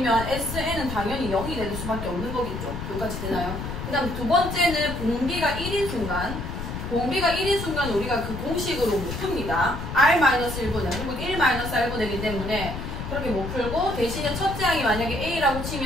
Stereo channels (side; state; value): left; noise; rumble, 6 dB below the sound